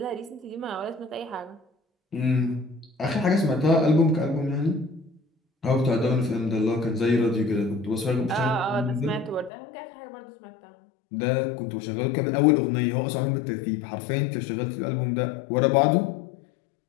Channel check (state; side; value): drops out; right; at 9.5 s